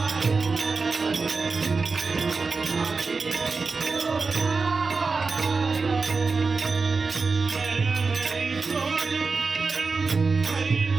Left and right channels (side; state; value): left; quieter; 4.4 dB